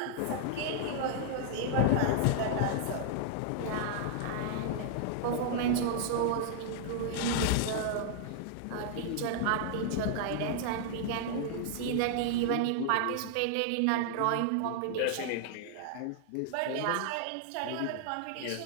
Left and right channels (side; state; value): both; different; correlation -0.01